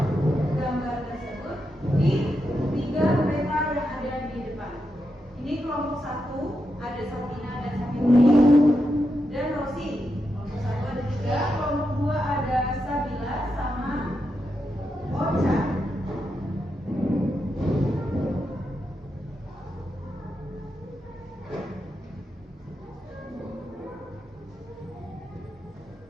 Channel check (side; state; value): both; normal; correlation 0.85